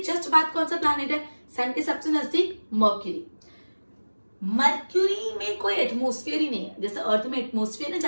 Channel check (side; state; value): both; inverted; correlation -1.00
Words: जस्ट बाद कौन सा प्लैनेट है? सन के सबसे नजदीक मर्क्यूरी। मर्क्यूरी में कोई एटमोस्फेयर ही नहीं है। जैसे अर्थ में एटमोस्फेयर है,